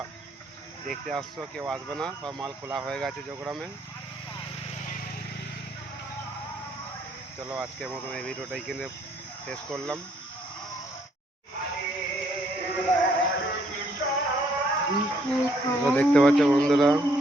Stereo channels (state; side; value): normal; both; correlation 0.68